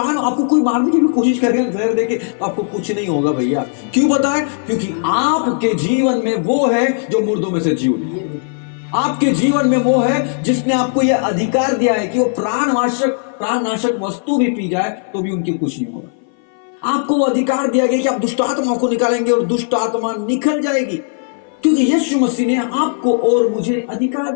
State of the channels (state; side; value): silent; right; 59 dB below the other